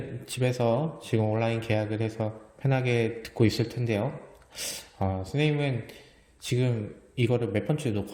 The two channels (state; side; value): identical; both; correlation 1.00